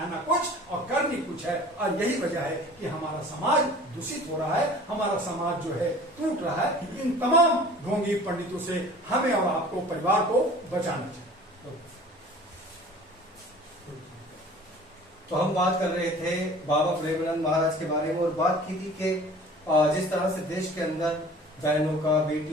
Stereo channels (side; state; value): both; normal; correlation 0.45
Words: कुछ और करनी कुछ है। और यही वजह है कि हमारा समाज दूषित हो रहा है, हमारा समाज जो है टूट रहा है। इन तमाम ढोंगी पंडितों से हमें और आपको, परिवार को बचाना चाहिए। तो हम बात कर रहे थे बाबा प्रेमानंद महाराज के बारे में और बात की थी कि जिस तरह से देश के अंदर बहनों का,